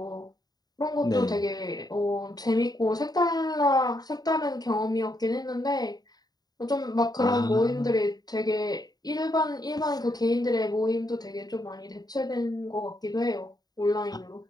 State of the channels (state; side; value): late; right; 0.19 ms